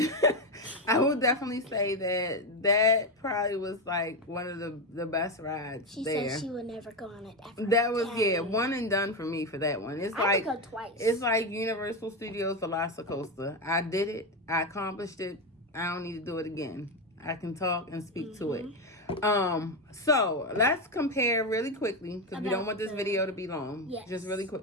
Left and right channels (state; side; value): normal; both; correlation 0.11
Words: I will definitely say that probably was like one of the best rides. She there. said she would never go on it ever. That was one and done for me for that one. It's I could go twice. It's like Universal Studios Velocicoaster. I did it. I accomplished it. I don't need to do it again. I can talk and speak to it. So let's compare really quickly because we don't want this video to be long. Yes. Just really